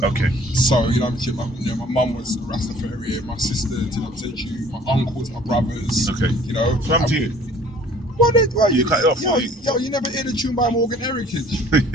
Okay. So my mum was a Rastafarian. My sister, my uncles, my brothers. Okay. So I'm to you. Well, you cut it off. You never heard a tune by Morgan Heritage.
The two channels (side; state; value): both; normal; correlation 0.53